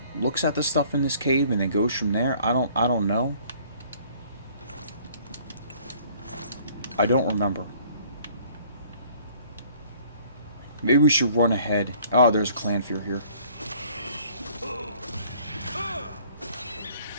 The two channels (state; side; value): inverted; both; correlation -0.56